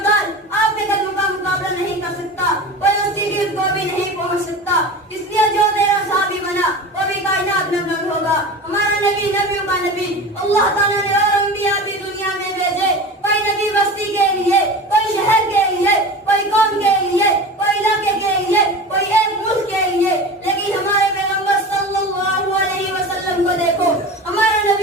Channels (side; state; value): both; normal; correlation 0.32